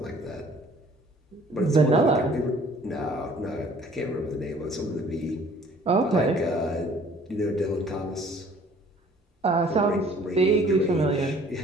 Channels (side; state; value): both; normal; correlation 0.55